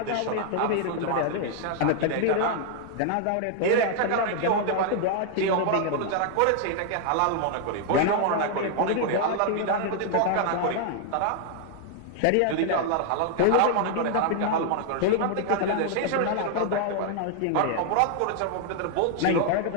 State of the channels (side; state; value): both; different; correlation 0.00